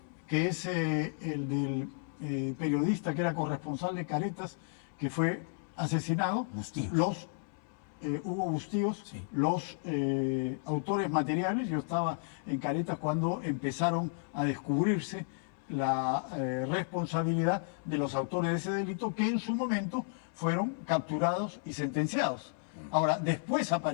que es el del periodista que era corresponsal de Caretas, que fue asesinado, Bustíos. Hugo Bustíos, Sí. los autores materiales, yo estaba en Caretas cuando empezaron a descubrirse la responsabilidad de los autores de ese delito que en su momento fueron capturados y sentenciados. Ahora, después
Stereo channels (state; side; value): silent; right; 56 dB below the other